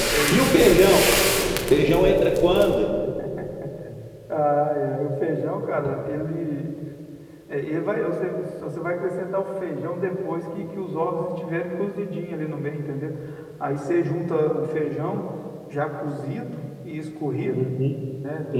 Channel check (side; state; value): both; identical; correlation 1.00